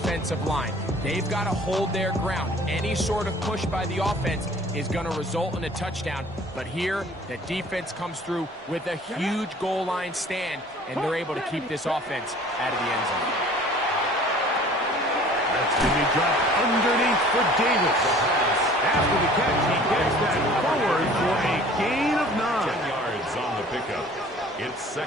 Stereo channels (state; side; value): normal; both; correlation 0.49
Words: line. They've got to hold their ground. Any sort of push by the offense is going to result in a touchdown. But here, the defense comes through with a huge goal line stand, and they're able to keep this offense out of the end zone. That's going to be dropped underneath for Davis. After the catch, he gets that forward for a gain of 9. 10 yards on the pickup. It's